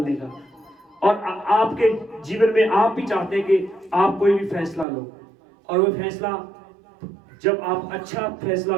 का। और आपके जीवन में आप भी चाहते हैं कि आप कोई भी फैसला लो, और वो फैसला जब आप अच्छा फैसला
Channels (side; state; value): left; drops out; at 4.9 s